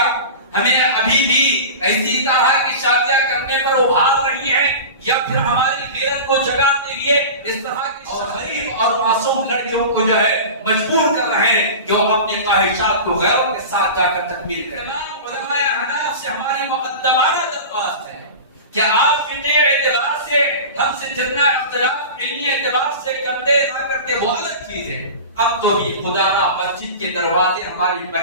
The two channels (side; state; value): both; inverted; correlation -0.32